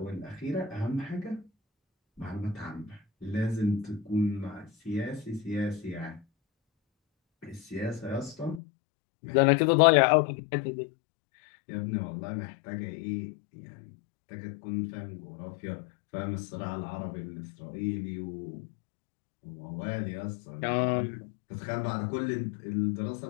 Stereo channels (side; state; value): right; drops out; at 8.6 s